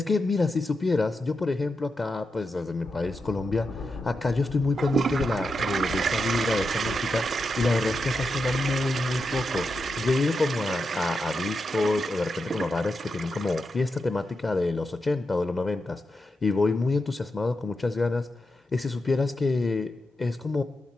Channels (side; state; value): both; normal; correlation 0.87